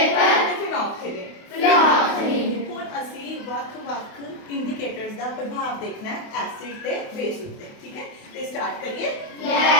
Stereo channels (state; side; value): late; right; 28 ms